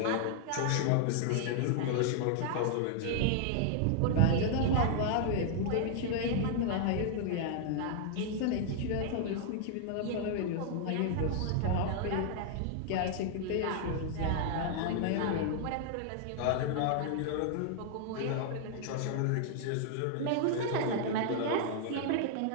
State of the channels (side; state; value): both; different; correlation 0.00